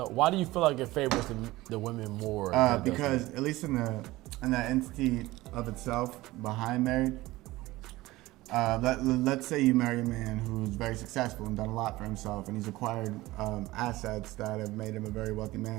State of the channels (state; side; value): quieter; left; 18.6 dB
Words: why do you feel like it favors the women more? than it does Because at least in the entity of itself behind marriage, let's say you marry a man who's very successful and done a lot for himself, and he's acquired assets that have made him a very wealthy